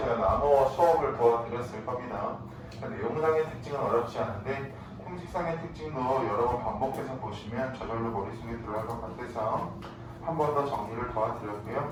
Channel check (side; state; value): both; identical; correlation 1.00